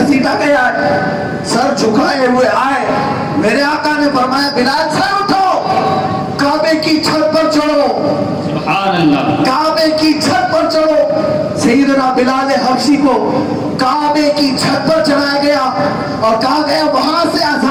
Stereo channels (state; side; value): identical; both; correlation 1.00